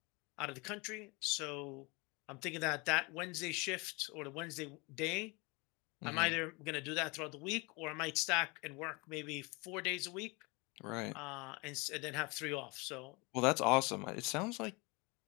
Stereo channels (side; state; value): right; quieter; 27.6 dB